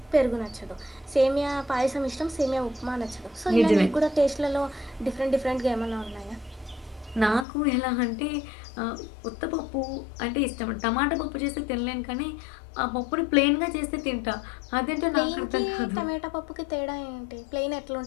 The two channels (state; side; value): drops out; right; at 7.5 s